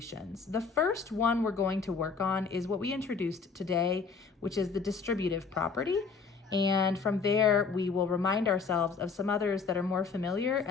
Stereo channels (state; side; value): quieter; right; 5.1 dB